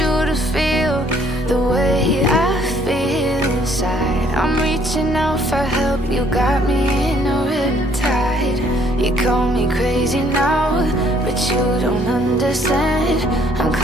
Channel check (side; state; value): both; normal; correlation 0.63